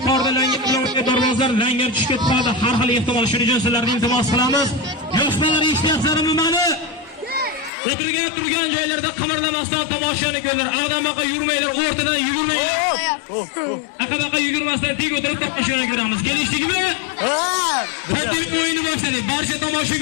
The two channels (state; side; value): drops out; right; at 7.7 s